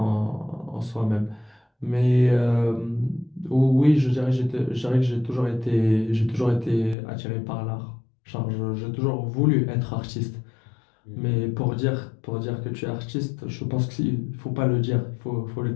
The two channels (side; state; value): right; drops out; at 7.0 s